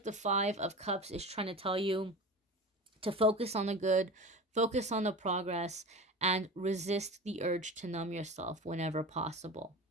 the 5 of Cups is trying to tell you to focus on the good, focus on the progress, and resist the urge to numb yourself whenever possible.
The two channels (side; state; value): both; normal; correlation 0.32